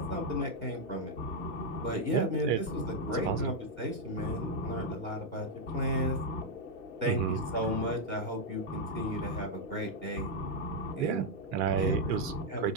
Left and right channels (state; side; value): late; left; 1.8 ms